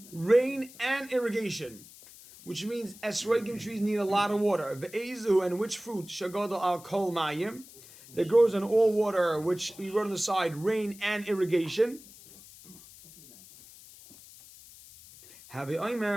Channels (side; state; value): left; noise; hiss, 20 dB below the sound